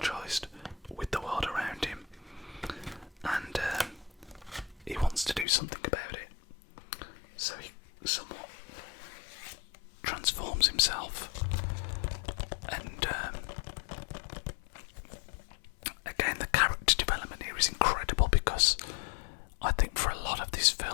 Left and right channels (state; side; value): drops out; right; at 5.5 s